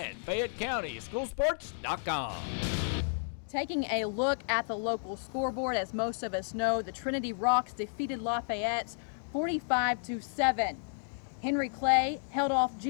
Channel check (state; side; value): silent; right; digital silence